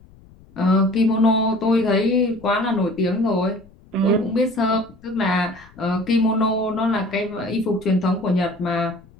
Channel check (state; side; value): noise; left; rumble, 26 dB below the sound